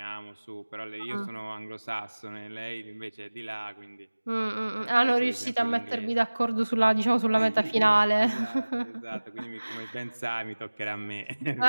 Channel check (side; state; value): both; inverted; correlation -1.00